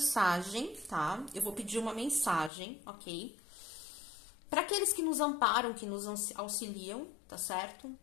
tá? Eu vou pedir uma mensagem, ok? Para aqueles que nos amparam, que nos auxiliam, tá certo?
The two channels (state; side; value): drops out; right; at 2.5 s